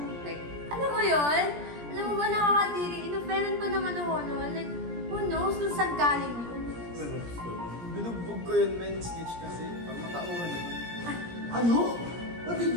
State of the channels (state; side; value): late; left; 17 ms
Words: Like, alam mo yun? Alam mo ba nakakadiri? Inoferan pa naman ako noon. Like, who knows kung saan galing yun? Binugbog ko yun, men. Snitch kasi. Pag matauhan yun. Ano? What did